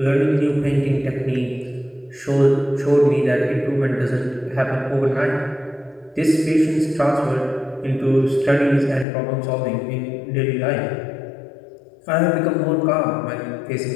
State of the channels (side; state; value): right; drops out; at 9.1 s